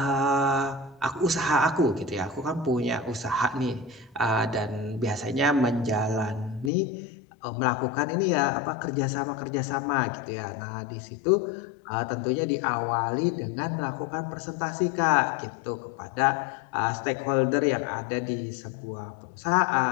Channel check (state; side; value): drops out; right; at 6.7 s